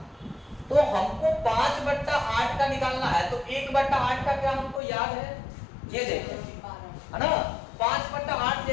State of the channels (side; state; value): right; drops out; at 4.8 s